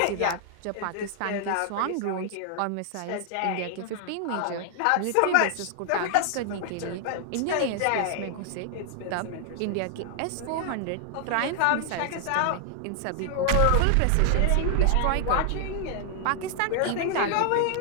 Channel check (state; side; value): different; both; correlation 0.00